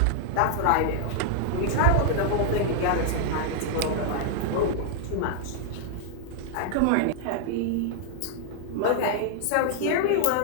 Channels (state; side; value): different; both; correlation -0.01